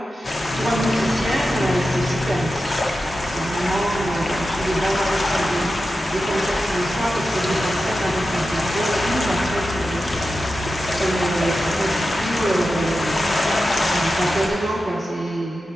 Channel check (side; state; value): both; normal; correlation 0.92